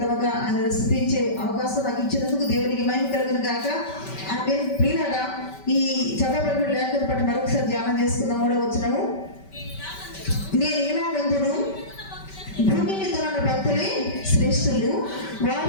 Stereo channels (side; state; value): right; late; 5.2 ms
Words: ఆయన స్థుతించే అవకాశం నాకు ఇచ్చినందుకు దేవునికి మహిమ కలుగును గాక. ఆమె ప్రియులారా, ఈ చదవబడిన లేఖను బట్టి మరొకసారి ధ్యానం చేసుకుందాం. 3వ వచనము. నేను ఇలాగందును, భూమి మీద ఉన్న భక్తులే శ్రేష్ఠులు,